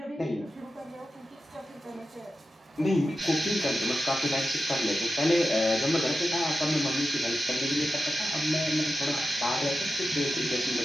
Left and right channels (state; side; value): normal; both; correlation 0.91